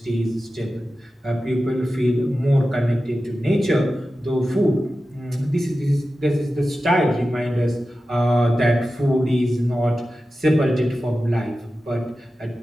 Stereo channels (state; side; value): normal; both; correlation 0.93